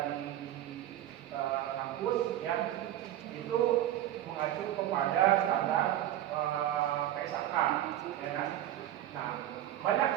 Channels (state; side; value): quieter; left; 12.8 dB